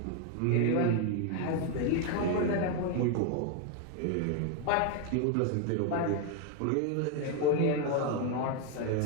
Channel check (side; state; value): both; different; correlation 0.01